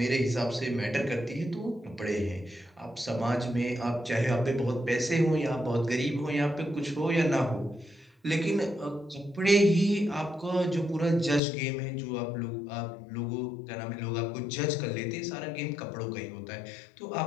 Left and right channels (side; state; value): right; drops out; at 11.4 s